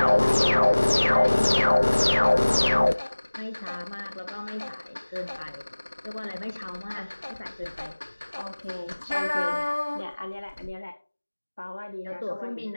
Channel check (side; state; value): both; inverted; correlation -1.00